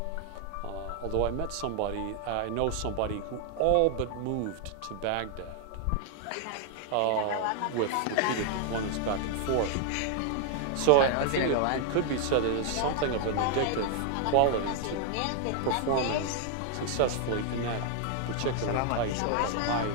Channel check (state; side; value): different; both; correlation 0.00